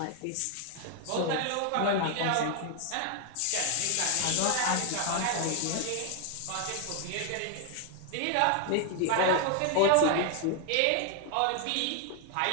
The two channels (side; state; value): both; different; correlation 0.01